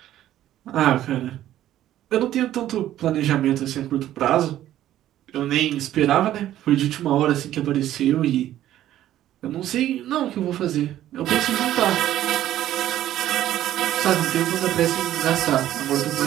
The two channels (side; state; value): left; quieter; 12.8 dB